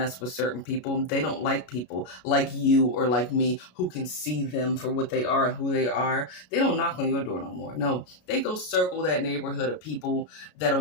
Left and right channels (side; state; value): right; late; 33 ms